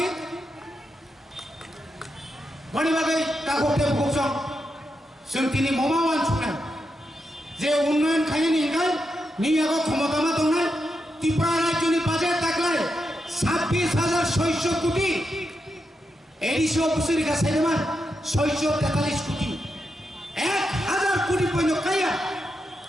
बनि बागै काखौते बुकजों जों दिनै ममावान सुना जे उन्नयन खायनि गाय नियागो क्षमतामा दंनाय त्रिपुरा राज्यनि बाजेट ताकलाय 26,600 কোটি এডিসি অফিসের কাছে মান 643 কোটি 1000 কোটি পণ্য কায়া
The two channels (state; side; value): normal; both; correlation 0.85